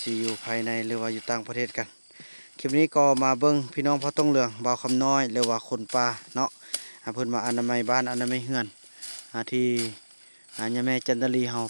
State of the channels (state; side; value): inverted; both; correlation -1.00